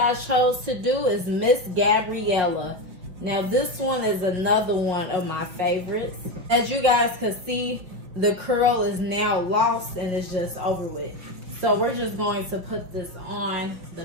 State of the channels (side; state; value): left; late; 5.4 ms